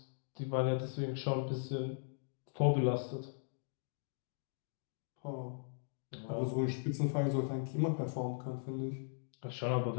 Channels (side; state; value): right; silent; digital silence